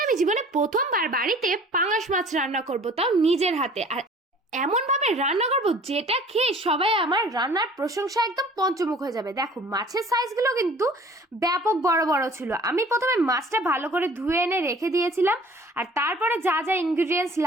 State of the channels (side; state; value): both; normal; correlation 0.49